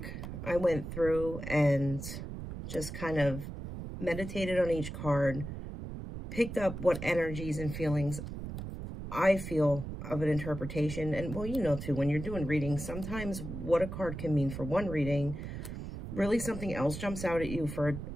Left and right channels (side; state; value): right; noise; rumble, 8 dB below the sound